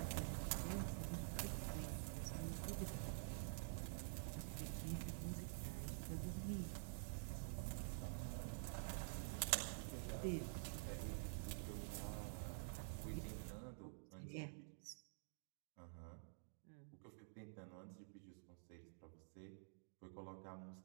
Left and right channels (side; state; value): left; silent; digital silence